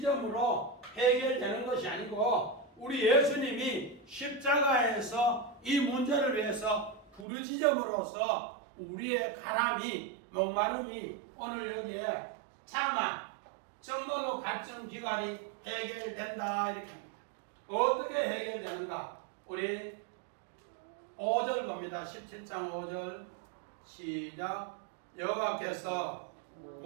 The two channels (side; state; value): left; drops out; at 7.2 s